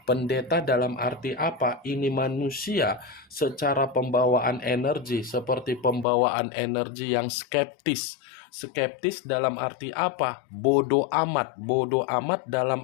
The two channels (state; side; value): drops out; right; at 6.1 s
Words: Pendeta dalam arti apa? Ini manusia secara pembawaan energi, seperti pembawaan energi yang skeptis. Skeptis dalam arti apa? Bodoh amat. Bodoh amat